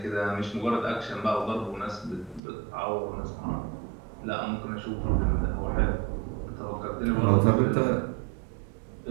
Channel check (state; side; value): drops out; left; at 2.4 s